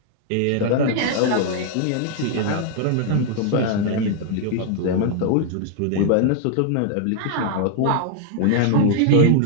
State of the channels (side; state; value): both; different; correlation 0.00